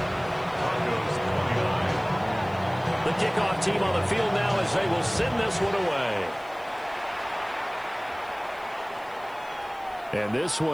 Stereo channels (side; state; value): left; noise; hiss, 27 dB below the sound